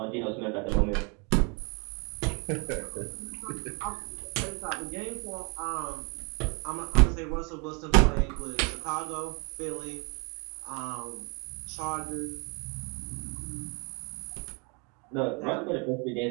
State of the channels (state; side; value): quieter; left; 33.3 dB